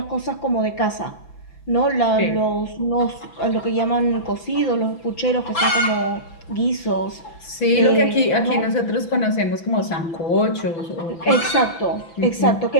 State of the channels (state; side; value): late; right; 6.0 ms